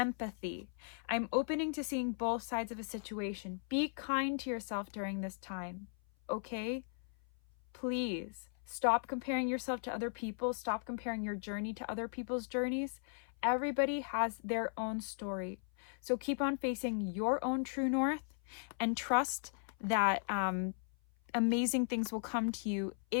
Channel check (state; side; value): silent; right; 53 dB below the other